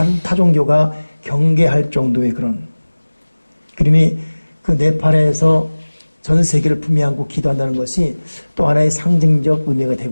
타종교가 경계할 정도의 그런 그림이 그 네팔에서 전 세계를 품에 안고 기도한다는 것이 또 하나의 상징적 의미가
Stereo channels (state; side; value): inverted; both; correlation -1.00